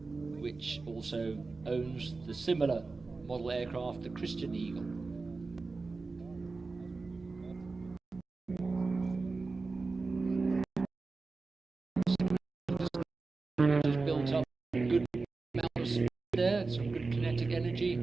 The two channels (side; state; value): left; quieter; 3.9 dB